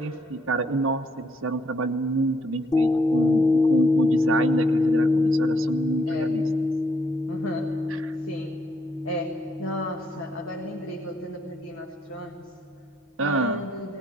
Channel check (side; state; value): both; normal; correlation 0.72